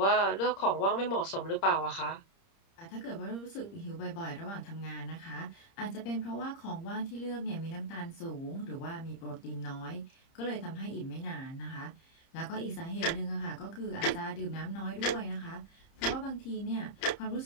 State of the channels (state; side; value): late; right; 30 ms